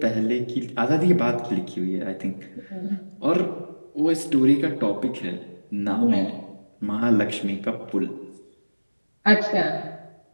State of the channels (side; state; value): both; inverted; correlation -1.00